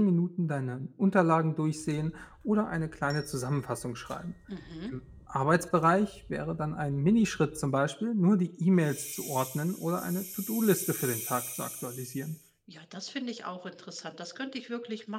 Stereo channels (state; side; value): identical; both; correlation 1.00